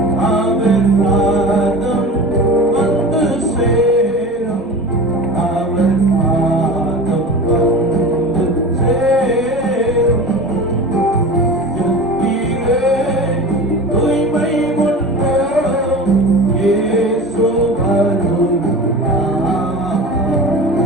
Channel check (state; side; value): normal; both; correlation 0.33